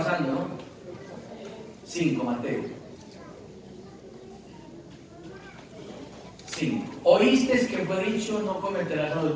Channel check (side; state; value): both; identical; correlation 1.00